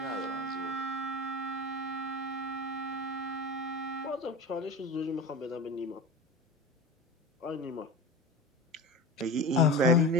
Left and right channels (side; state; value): both; normal; correlation 0.30